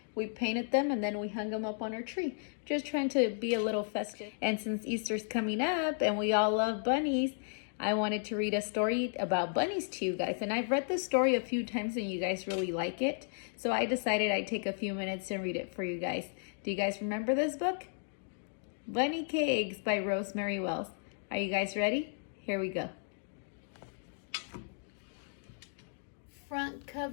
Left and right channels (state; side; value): silent; right; digital silence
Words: We painted them and then we hung them up on our tree. Just trying to be a little festive. And since Easter's coming up and we all love bunnies, I wanted to read a story about bunnies to you guys. And I've read this story a few times and you guys really like it. So I decided I'd take a few minutes and read it for you guys. Do you guys remember this book? Bunny Cakes by Rosemary Wells. Are you guys ready? Here we go. Front